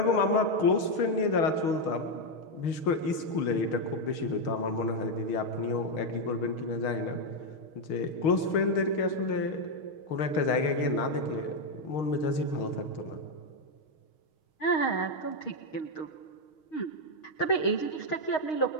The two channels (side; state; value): right; late; 6.4 ms